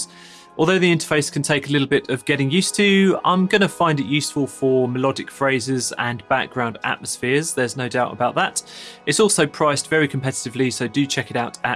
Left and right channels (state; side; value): identical; both; correlation 1.00